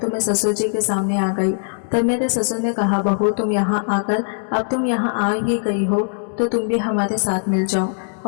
मैं ससुर जी के सामने आ गई। तब मेरे ससुर ने कहा, बहू तुम यहाँ आकर, अब तुम यहाँ आ ही गई हो तो तुम भी हमारे साथ मिल जाओ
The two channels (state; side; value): silent; right; digital silence